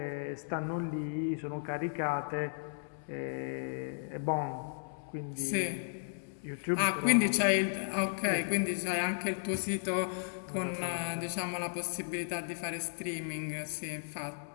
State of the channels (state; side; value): silent; right; 55 dB below the other